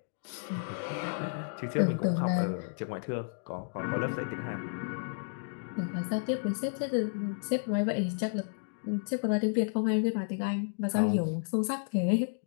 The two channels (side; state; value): right; silent; digital silence